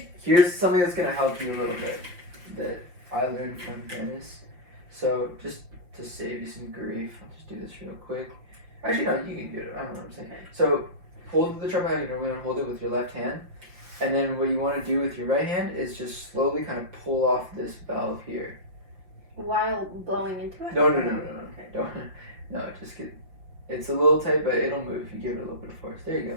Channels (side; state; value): left; late; 5.6 ms